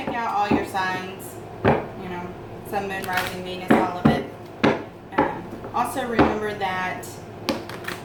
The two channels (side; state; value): both; identical; correlation 1.00